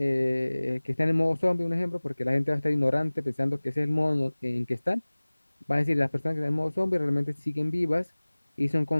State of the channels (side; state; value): both; inverted; correlation -1.00